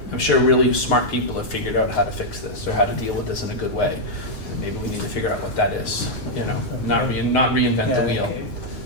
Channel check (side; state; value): right; late; 9.5 ms